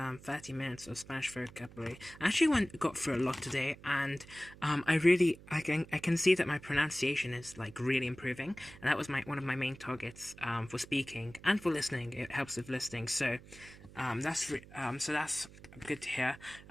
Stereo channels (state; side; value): noise; right; hum, 19 dB below the sound